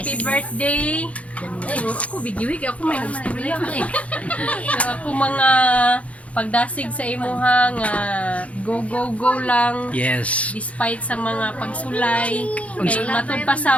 birthday. Ako, video ako may gusto niya. Ako mga pagdasig sa imuha nga go lang. Yes. Despite sa mga pagsulay kay matud pa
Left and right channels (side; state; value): right; late; 0.065 ms